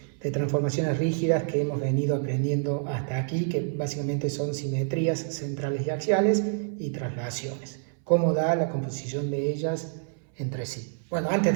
transformaciones rígidas que hemos venido aprendiendo hasta aquí, que básicamente son simetrías centrales y axiales y traslaciones. Cómo da la composición de ellas entre sí. Bueno, antes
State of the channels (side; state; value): left; silent; 60 dB below the other